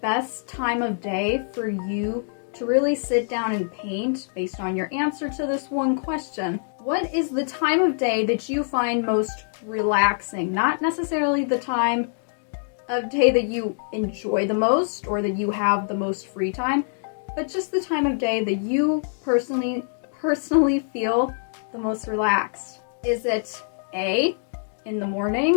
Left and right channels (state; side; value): silent; right; digital silence